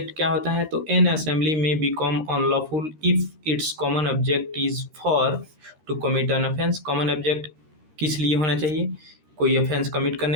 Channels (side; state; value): left; late; 13 ms